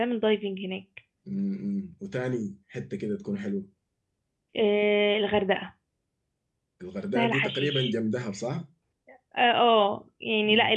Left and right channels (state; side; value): identical; both; correlation 1.00